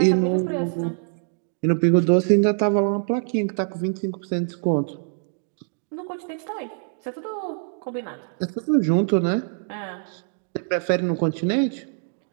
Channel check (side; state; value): left; silent; digital silence